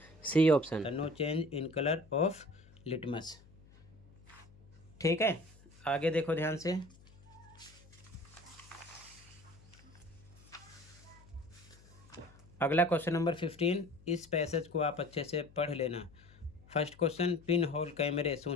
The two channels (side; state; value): left; noise; hum, 24 dB below the sound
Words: C option, no change in colour of litmus. ठीक है। आगे देखो ध्यान से। अगला क्वेश्चन नंबर 15, इस पैसेज को आप अच्छे से पढ़ लेना। फर्स्ट क्वेश्चन, पिन होल कैमरे